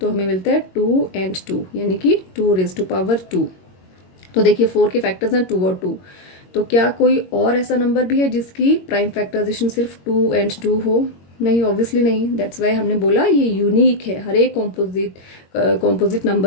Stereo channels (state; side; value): late; right; 22 ms